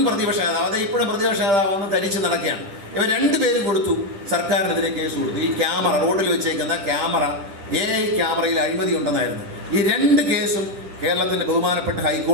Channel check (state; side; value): late; left; 10 ms